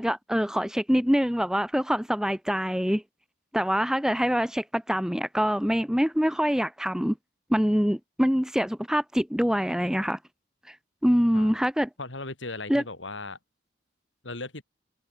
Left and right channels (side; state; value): both; normal; correlation 0.98